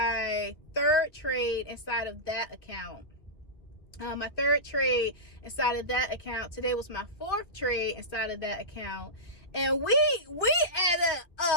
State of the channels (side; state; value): right; late; 2.3 ms